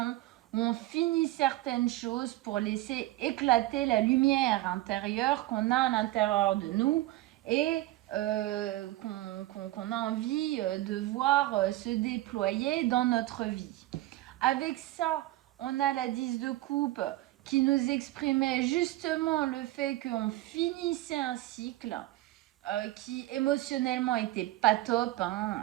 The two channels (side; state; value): left; quieter; 17.2 dB